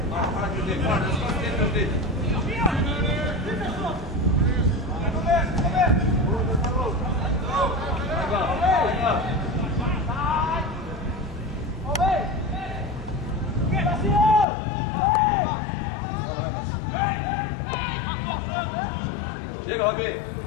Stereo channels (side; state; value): right; drops out; at 14.5 s